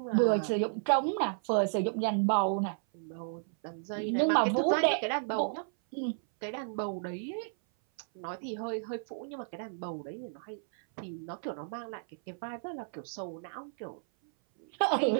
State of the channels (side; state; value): left; silent; 56 dB below the other